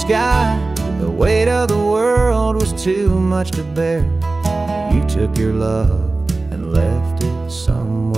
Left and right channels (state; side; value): quieter; left; 3.4 dB